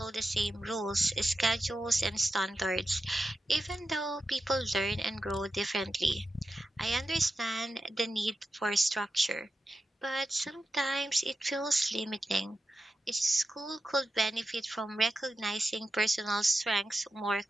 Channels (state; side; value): normal; both; correlation 0.91